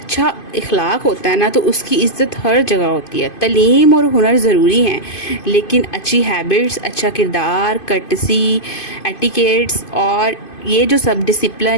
اخلاق ہوتا ہے نا تو اس کی عزت ہر جگہ ہوتی ہے۔ تعلیم اور ہنر ضروری ہیں، لیکن اچھی ہیبٹس، اچھا کردار، کرٹسی، ایٹیکیٹس اور یہ جو سب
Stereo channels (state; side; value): late; right; 2.5 ms